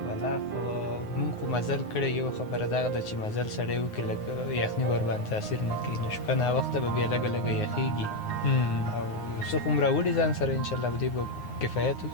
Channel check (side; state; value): right; late; 9.5 ms